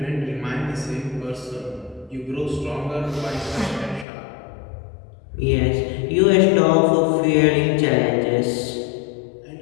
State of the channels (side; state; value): right; drops out; at 4.0 s